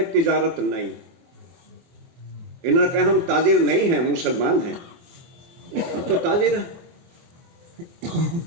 तिजारत नहीं। इन्होंने कहा हम ताजिर नहीं हैं, मुसलमान हैं। हम तो ताजिर हैं,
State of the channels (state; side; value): late; left; 24 ms